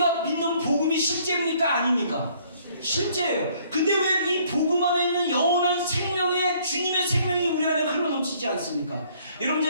믿는 복음이 실제입니까? 아닙니까? 실제예요. 근데 왜 이 복음 안에 있는 영원한 생명의 주님의 생명이 우리 안에 흘러넘치지 않습니까? 여러분,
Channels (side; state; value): both; inverted; correlation -0.62